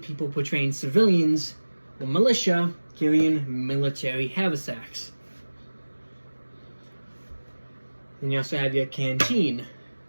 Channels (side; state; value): both; inverted; correlation -1.00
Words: portraying civilians or militia carrying military haversacks. Then you also have your canteen,